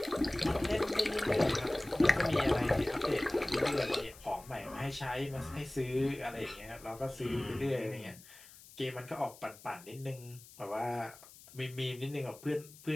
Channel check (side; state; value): left; noise; hiss, 20 dB below the sound